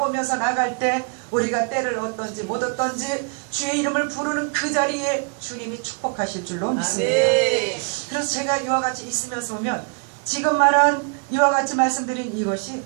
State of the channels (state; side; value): quieter; left; 37.7 dB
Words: 나갈 때 우리가 때를 얻든지 못 얻든지 주의 이름을 부르는 그 자리에 주님이 축복하실 줄로 믿습니다. 그래서 제가 이와 같이 있으면서 보면 지금 말한 이와 같이 말씀드린 이것이